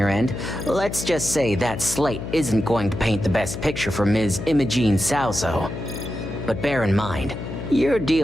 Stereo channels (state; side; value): noise; left; hum, 8 dB below the sound